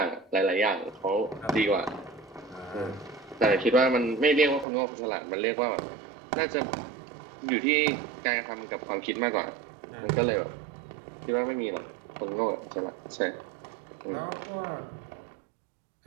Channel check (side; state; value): left; drops out; at 4.7 s